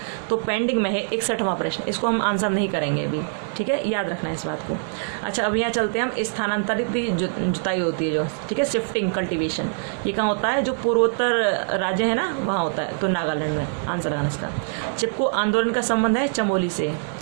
तो पेंडिंग में है 61वां प्रश्न, इसको हम आंसर नहीं करेंगे अभी, ठीक है, याद रखना है इस बात को। अच्छा, अब यहाँ चलते हैं हम, स्थानांतरित जुताई होती है जो, ठीक है, शिफ्टिंग कल्टीवेशन, ये कहाँ होता है, जो पूर्वोत्तर राज्य है ना वहाँ होता है, तो नागालैंड में आंसर लगाना इसका। चिपको आंदोलन का संबंध है चमोली से।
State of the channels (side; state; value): left; silent; digital silence